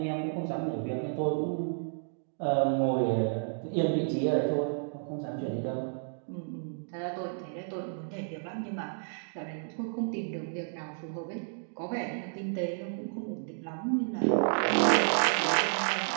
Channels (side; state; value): left; silent; digital silence